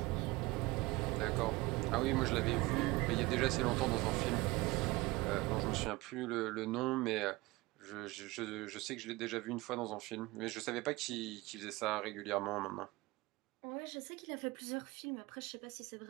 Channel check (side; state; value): left; quieter; 21.5 dB